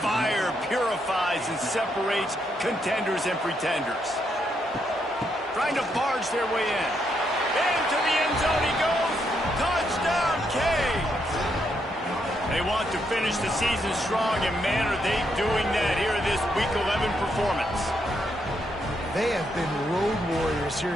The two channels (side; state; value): both; normal; correlation 0.78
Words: purifies and separates contenders and pretenders. Trying to barge their way in. Into the end zone he goes. Touchdown, Canes! They want to finish the season strong, and man, are they doing that here in this Week 11 performance. They have been road warriors here